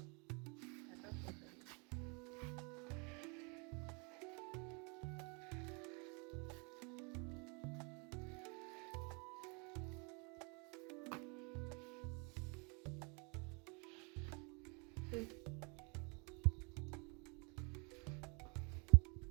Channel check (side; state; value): left; quieter; 32.9 dB